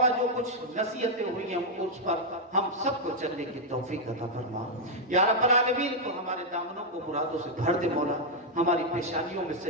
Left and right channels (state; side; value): normal; both; correlation -0.02